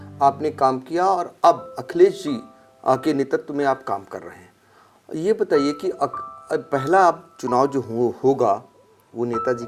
आपने काम किया और अब अखिलेश जी के नेतृत्व में आप काम कर रहे हैं। ये बताइए कि पहला आप चुनाव जो होगा वो नेताजी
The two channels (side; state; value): both; identical; correlation 1.00